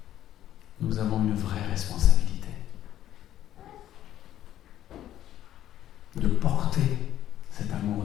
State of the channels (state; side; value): quieter; right; 12.1 dB